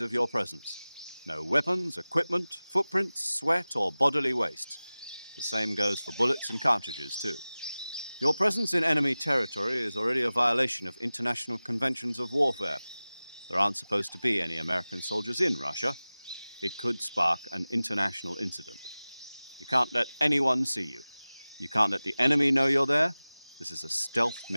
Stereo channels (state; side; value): inverted; both; correlation -0.98